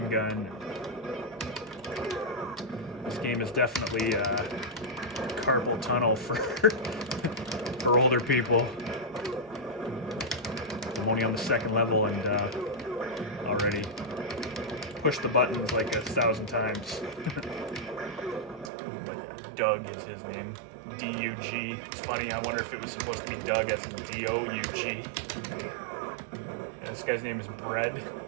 gun. This game is definitely carpal tunnel for for older people. I'm only on the second level and already pushed the buttons like 1,000 times. Doug is his name. D-U-G. It's funny, I wonder if it was supposed to be Doug as in D-O-U-G. And this guy's name is Bread.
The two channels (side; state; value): left; drops out; at 18.7 s